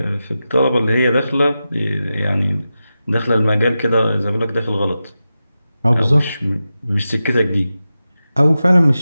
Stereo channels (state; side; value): inverted; both; correlation -0.92